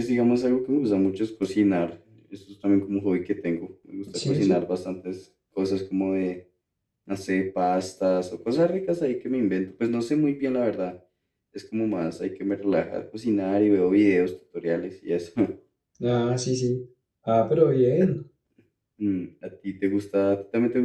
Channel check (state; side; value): identical; both; correlation 1.00